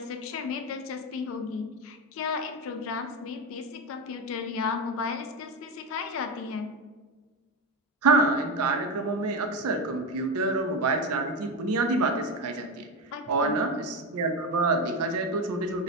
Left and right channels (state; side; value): normal; both; correlation 0.16